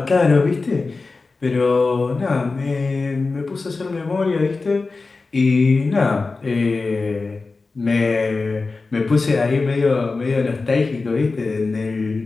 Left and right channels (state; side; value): quieter; right; 3.9 dB